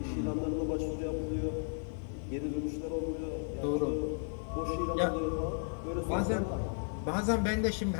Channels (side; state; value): right; silent; 55 dB below the other